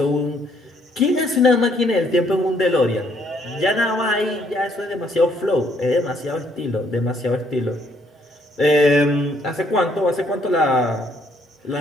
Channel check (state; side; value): normal; both; correlation 0.68